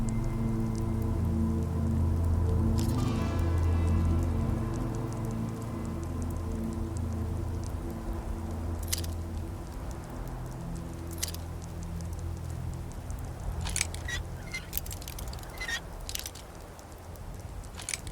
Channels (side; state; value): both; identical; correlation 1.00